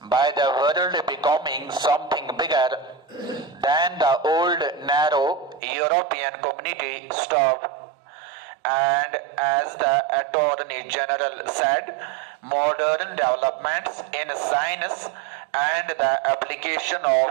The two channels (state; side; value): drops out; left; at 5.6 s